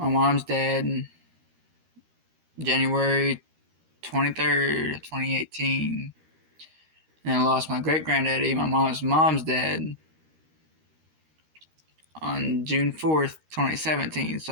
mom's dad in January 23rd, 2018. And I lost my great granddaddy, my mom's dad, on June 4th, 2017.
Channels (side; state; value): left; late; 13 ms